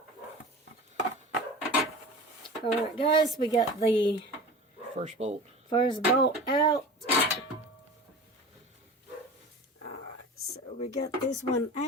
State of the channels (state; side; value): normal; both; correlation 0.35